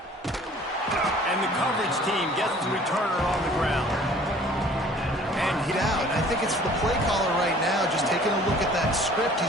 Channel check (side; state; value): both; normal; correlation 0.52